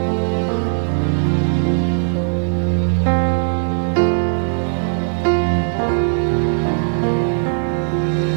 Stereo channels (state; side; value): silent; left; digital silence